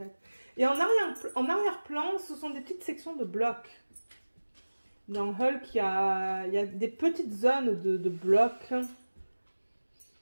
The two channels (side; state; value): both; inverted; correlation -1.00